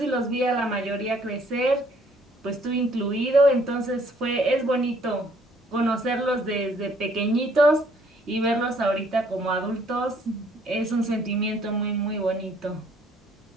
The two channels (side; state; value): both; normal; correlation 0.63